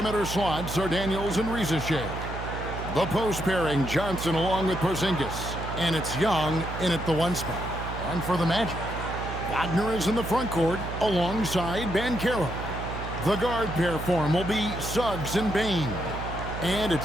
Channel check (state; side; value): noise; right; hum, 7 dB below the sound